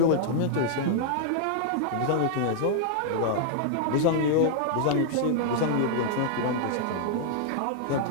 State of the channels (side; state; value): both; different; correlation -0.01